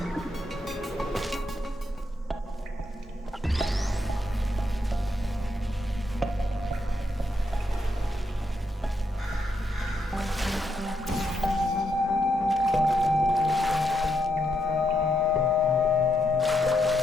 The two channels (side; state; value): both; normal; correlation 0.79